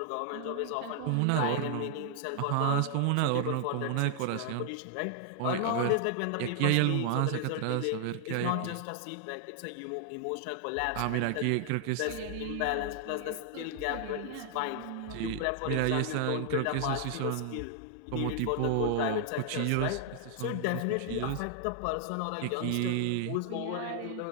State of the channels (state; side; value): different; both; correlation 0.00